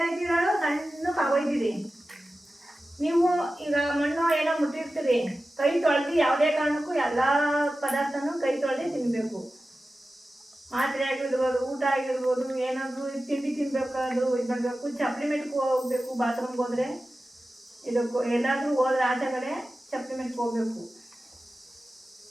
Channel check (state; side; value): normal; both; correlation 0.94